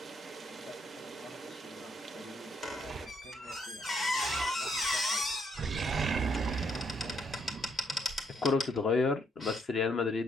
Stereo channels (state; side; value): normal; both; correlation 0.72